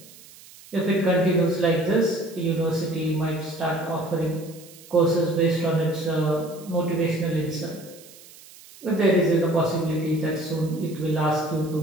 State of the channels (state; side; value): noise; right; hiss, 21 dB below the sound